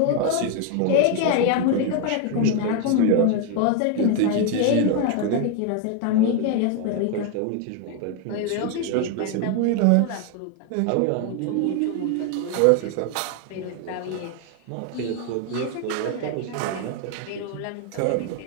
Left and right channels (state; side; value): different; both; correlation 0.01